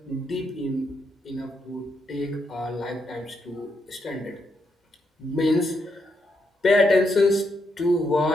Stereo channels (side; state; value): both; normal; correlation 0.80